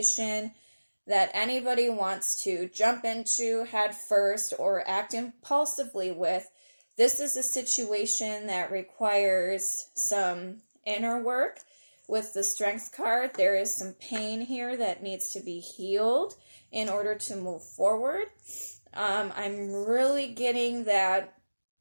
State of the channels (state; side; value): inverted; both; correlation -1.00